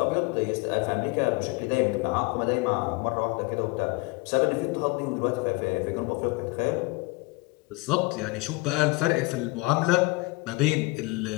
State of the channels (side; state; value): right; quieter; 24.6 dB